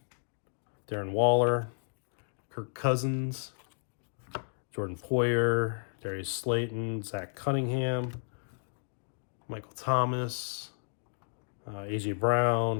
Darren Waller, Kirk Cousins, Jordan Poyer, Darius Slayton, Zach Cunningham, Michael Thomas, A.J.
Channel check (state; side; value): silent; right; digital silence